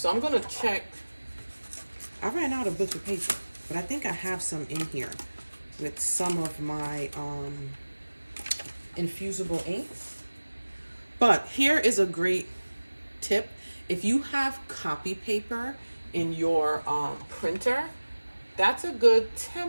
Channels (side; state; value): both; inverted; correlation -1.00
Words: I'm going to check. I ran out of butcher paper, but I think I have some in here with some of my infusible inks. But here is a great tip. If you have copy paper in your printer, that's a good